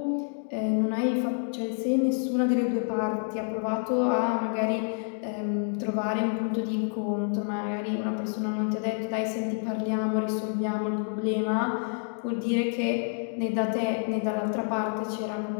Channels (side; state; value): right; silent; 59 dB below the other